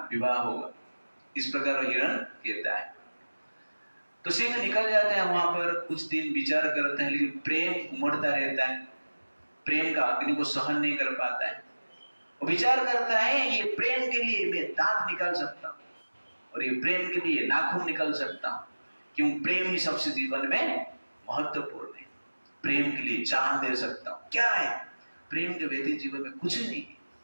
विवाह होगा। इस प्रकार हिरण कहता है। तो सिंह निकल जाता है, वहां पर कुछ दिन विचार करता है, लेकिन प्रेम उमड़ता रहता है। प्रेम का अग्नि को सहन नहीं कर पाता है। वो विचार करता है, ये प्रेम के लिए मैं दांत निकाल सकता हूं और ये प्रेम के लिए नाखून निकाल सकता हूं, क्यों? प्रेम ही सबसे जीवन में महत्वपूर्ण है। प्रेम के लिए जान दे सकता हूं। क्या है? प्रेम के व्यतीत जीवन में कुछ नहीं है।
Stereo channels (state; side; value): inverted; both; correlation -1.00